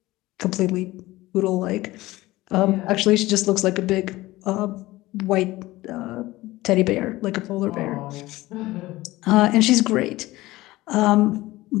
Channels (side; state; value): right; quieter; 18.3 dB